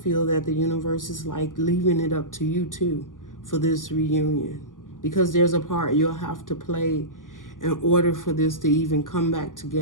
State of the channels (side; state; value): right; late; 0.88 ms